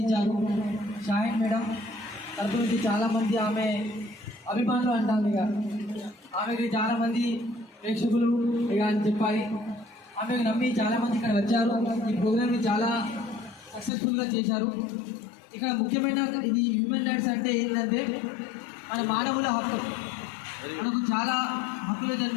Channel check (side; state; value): right; drops out; at 13.9 s